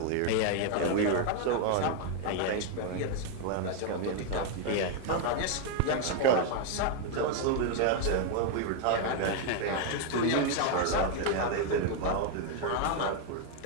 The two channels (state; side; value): different; both; correlation 0.00